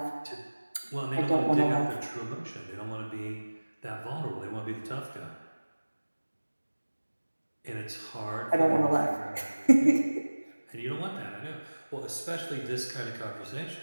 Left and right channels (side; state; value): both; inverted; correlation -1.00